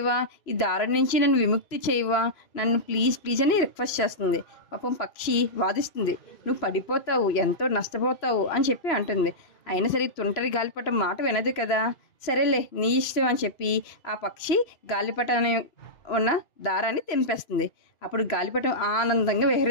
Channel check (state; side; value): late; right; 2.5 ms